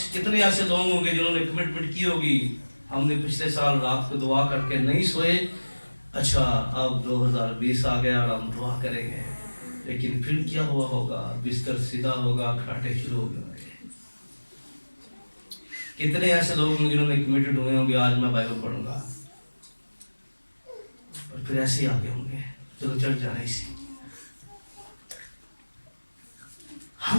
کتنے ایسے لوگ ہوں گے جنہوں نے کمٹمنٹ کی ہوگی، ہم نے پچھلے سال رات کو دعا کر کے نہیں سوئے، اچھا اب 2020 آ گیا اور ہم دعا کریں گے، لیکن پھر کیا ہوا ہوگا، بستر سیدھا ہوگا، کھاٹے شروع ہو گئے۔ کتنے ایسے لوگ ہوں جنہوں نے کمیٹڈ ہوئے ہوں گے آج میں بائبل پڑھوں گا، اور پھر ایسے ہی آگے ہوں گے، چلو چڑھ جا رہی سی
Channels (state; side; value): inverted; both; correlation -1.00